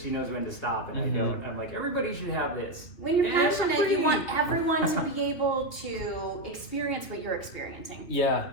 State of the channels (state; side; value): late; right; 2.8 ms